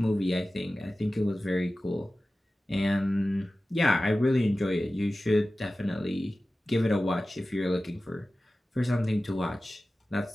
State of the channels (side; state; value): both; normal; correlation 0.96